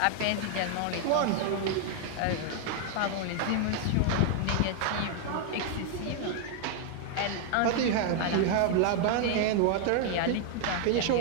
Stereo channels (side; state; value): both; different; correlation 0.00